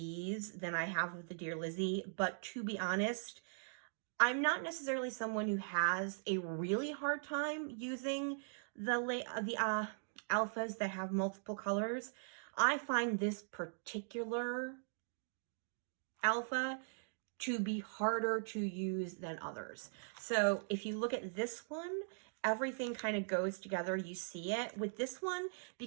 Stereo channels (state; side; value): silent; left; digital silence